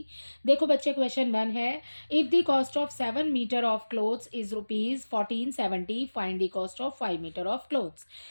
देखो बच्चे, क्वेश्चन 1 है, if the cost of 7 metre of clothes is ₹1470, find the cost of 5 metre of clothes.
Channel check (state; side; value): inverted; both; correlation -1.00